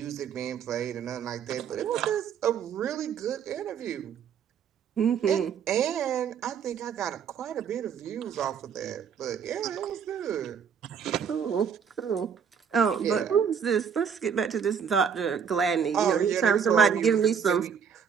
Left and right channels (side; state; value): left; quieter; 7.2 dB